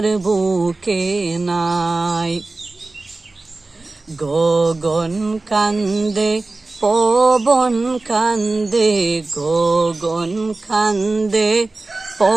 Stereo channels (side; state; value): left; quieter; 3.3 dB